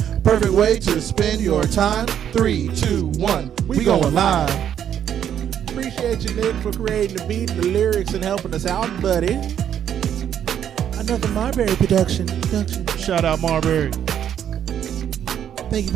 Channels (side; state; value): left; quieter; 9.5 dB